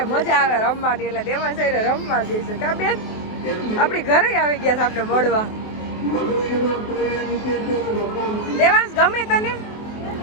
મજા આવે રમવાની, એટલે દેવાંશ આયરે રમવા ગઈ છે. કા બેન આપણી ઘરે આવી ગયા છે આપણે મળવા. દેવાંશ ગમે તને?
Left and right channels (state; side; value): late; right; 24 ms